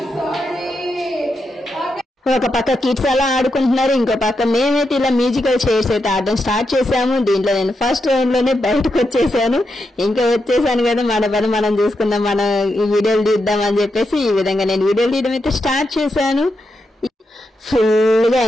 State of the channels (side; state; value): both; normal; correlation 0.85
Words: ఒక పక్క కిడ్స్ అలా ఆడుకుంటున్నారు, ఇంకో పక్క మేమైతే ఇలా మ్యూజికల్ చైర్స్ అయితే ఆడడం స్టార్ట్ చేసాము. దీంట్లో నేను ఫస్ట్ రౌండ్ లోనే బయటకు వచ్చేసాను. ఇంకా వచ్చేసాను కదా, మన పని మనం చూసుకుందాం, మనం ఈ వీడియోలు తీద్దాం అని చెప్పేసి ఈ విధంగా నేను వీడియోలు తీయడం అయితే స్టార్ట్ చేశాను. ఫుల్ గా